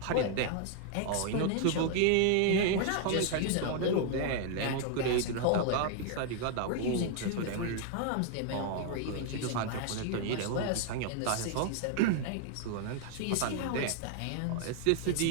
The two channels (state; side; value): different; both; correlation 0.00